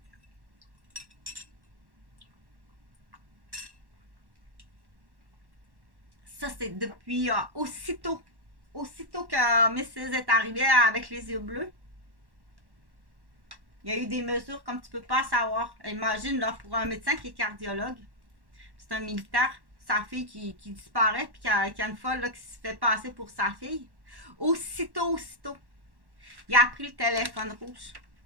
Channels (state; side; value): late; left; 1.1 ms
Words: Ça, c'est depuis aussitôt que Mrs. est arrivée avec les yeux bleus. Il y a eu des mesures comme tu peux pas savoir. Imagine, là, pour un médecin qui est cardiologue, c'est un militaire, sa fille qui disparaît, puis qui a une folle là, qui se fait passer pour sa fille. Aussitôt, il a pris le téléphone rouge.